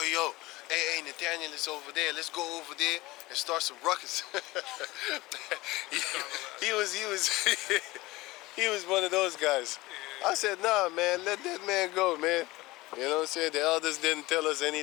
hey, Nathaniel is over there. Let's go over there and start some ruckus. he was he was one of those guys. I said, nah, man, let that man go, man. You know what I'm saying? The elders didn't tell us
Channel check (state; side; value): quieter; right; 20.1 dB